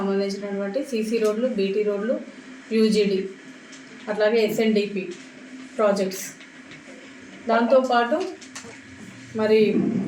సీసీ రోడ్లు, బీటీ రోడ్లు, యూజీడీ, అట్లాగే ఎస్ఎన్డిపి ప్రాజెక్ట్స్, దాంతోపాటు మరి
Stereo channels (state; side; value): identical; both; correlation 1.00